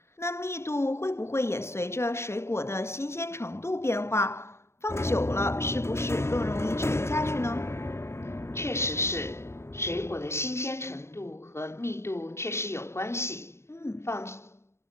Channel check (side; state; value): right; late; 0.13 ms